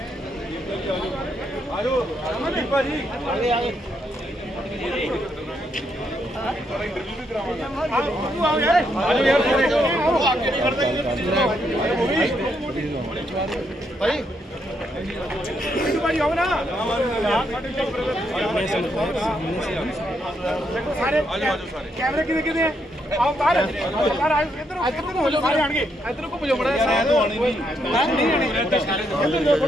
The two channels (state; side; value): normal; both; correlation 0.77